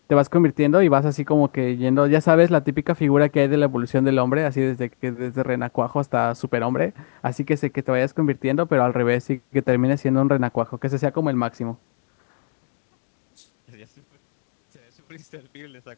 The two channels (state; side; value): silent; right; digital silence